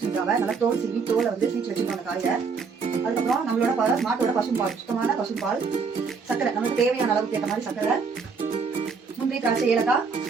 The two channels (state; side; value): quieter; left; 5.2 dB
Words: நல்லா தோல் சீவி தோலை வந்து சீச்சு வச்சுருக்கோம் அந்த காயை. அதுக்கப்புறம் நம்மளோட மாட்டோட பசும்பால், சுத்தமான பசும்பால், சக்கரை நமக்கு தேவையான அளவுக்கு ஏற்ற மாதிரி சக்கரை, முந்திரி, திராட்சை, ஏலக்காய்,